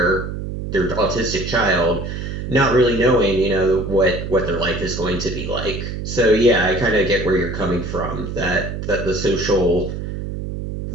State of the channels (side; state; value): right; noise; hum, 6 dB below the sound